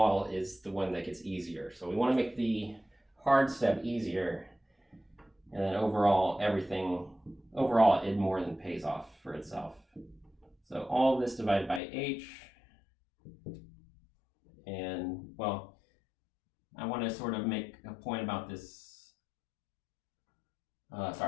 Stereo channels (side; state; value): right; drops out; at 11.8 s